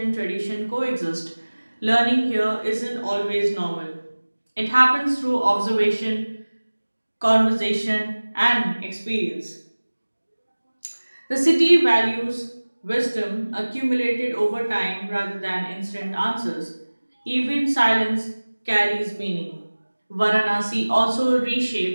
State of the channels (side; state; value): both; inverted; correlation -1.00